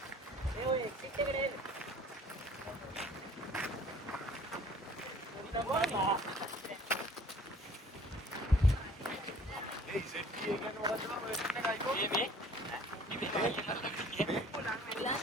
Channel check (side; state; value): both; normal; correlation 0.52